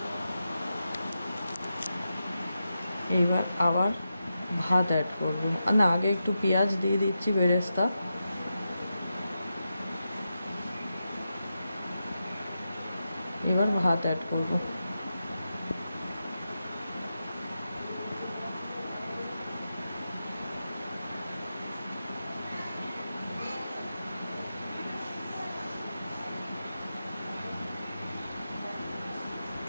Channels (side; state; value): both; inverted; correlation -0.89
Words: এইবার আবার ভাত অ্যাড করবো, না আগে একটু পেঁয়াজ দিয়ে দিচ্ছি বেরেস্তা, এবার ভাত অ্যাড করবো।